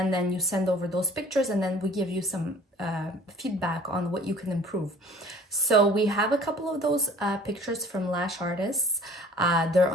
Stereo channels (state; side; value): normal; both; correlation 0.48